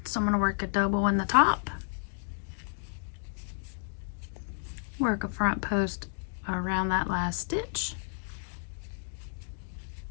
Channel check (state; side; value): silent; right; digital silence